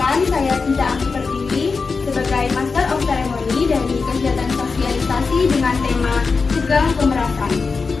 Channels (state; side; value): quieter; right; 4.6 dB